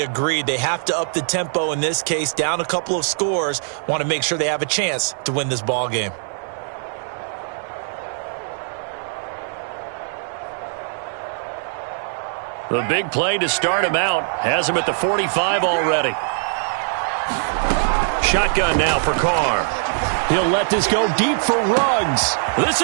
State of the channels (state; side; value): silent; left; 60 dB below the other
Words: agreed. They have to up the tempo in this case, down a couple of scores. Want to make sure they have a chance to win this ball game. The big play to start him out has him at the 45 already. Shotgun now for Carr. He'll let this go deep for Ruggs. This